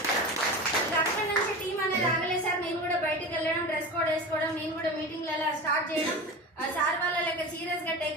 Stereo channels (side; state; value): both; normal; correlation 0.29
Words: అక్కడి నుంచి టీం అనేది ఆగలేదు సార్. నేను కూడా బయటకు వెళ్ళడం, డ్రెస్ కోడ్ వేసుకోవడం, నేను కూడా మీటింగ్లలో స్టార్ట్ చేయడం, సార్ వాళ్ళ లెక్క సీరియస్ గా